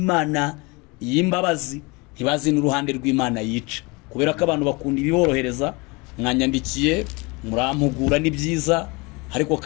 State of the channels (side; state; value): right; quieter; 26.4 dB